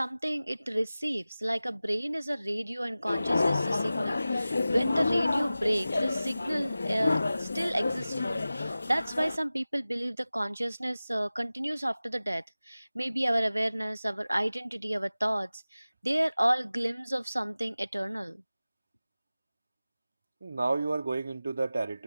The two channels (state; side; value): inverted; both; correlation -0.96